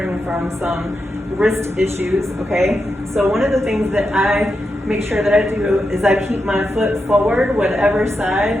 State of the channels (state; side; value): normal; both; correlation 0.87